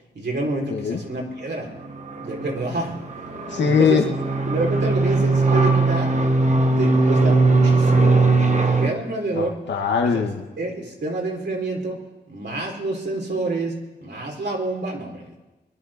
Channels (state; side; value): normal; both; correlation 0.72